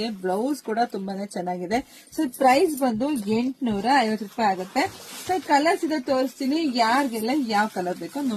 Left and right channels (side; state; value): both; identical; correlation 1.00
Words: ಬ್ಲೌಸ್ ಕೂಡ ತುಂಬಾನೇ ಚೆನ್ನಾಗಿದೆ. ಸೊ ಪ್ರೈಸ್ ಬಂದು 850 ರೂಪಾಯಿ ಆಗುತ್ತೆ. ಸೊ ಕಲರ್ಸ್ ಇದೆ ತೋರಿಸ್ತೀನಿ, ಯಾರಿಗೆಲ್ಲ ಯಾವ ಕಲರ್ ಬೇಕೋ